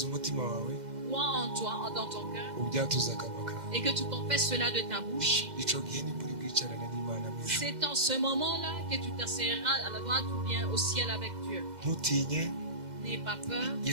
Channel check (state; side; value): late; left; 2.0 ms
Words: umutima wawe crois en toi, dans ton cœur, ubyatuza akanwa kawe, et que tu confesses cela de ta bouche, ico gihe nibwo uri bwicarane n'Imana mu ijuru. c'est en ce moment-là que tu t'asseoiras à la droite ou bien au ciel avec Dieu. Ntutinye, N'aie pas peur.